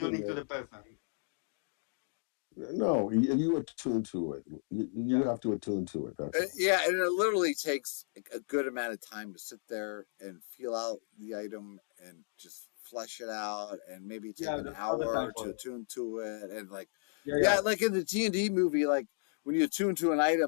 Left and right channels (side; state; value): right; silent; digital silence